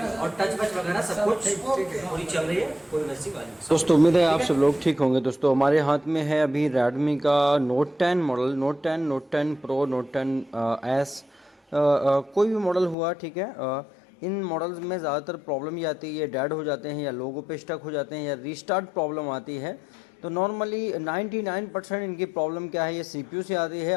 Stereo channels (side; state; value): right; drops out; at 13.0 s